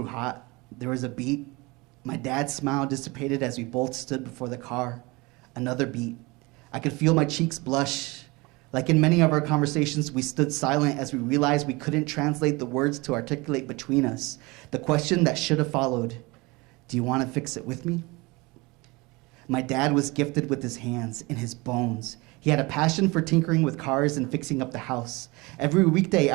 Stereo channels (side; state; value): left; quieter; 24.5 dB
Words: hot. There was a beat. My dad's smile dissipated as we both stood before the car. Another beat. I could feel my cheeks blush. Like in many of our conversations, we stood silent as we realized we couldn't translate the words to articulate between us. The question that should have followed, do you want to fix it with me? My dad was gifted with his hands and his bones. He had a passion for tinkering with cars and fixing up the house. Every weekday